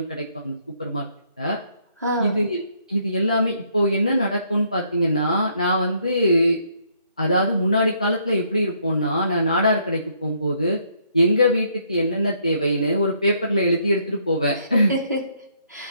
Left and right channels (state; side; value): inverted; both; correlation -0.69